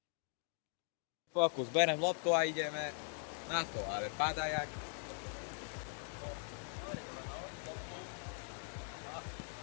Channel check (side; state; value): right; silent; 50 dB below the other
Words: Fokus, berem loptu a ideme na to, ale padá jak...